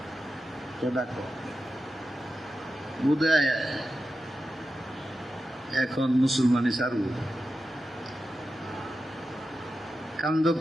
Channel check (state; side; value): normal; both; correlation 0.91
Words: ডাকো বুঝে এখন মুসলমানি সারু